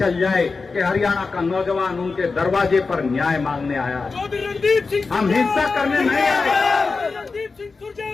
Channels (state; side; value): quieter; right; 4.3 dB